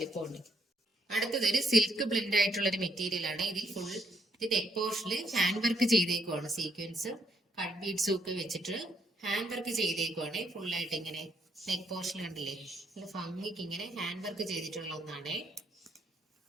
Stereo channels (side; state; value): both; normal; correlation 0.74